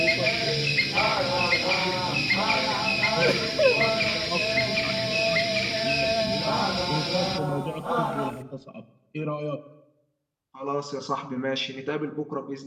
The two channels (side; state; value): both; identical; correlation 1.00